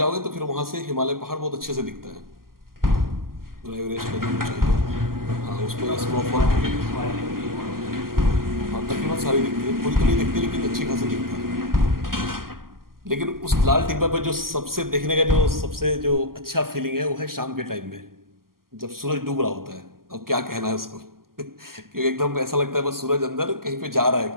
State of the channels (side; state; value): left; late; 0.92 ms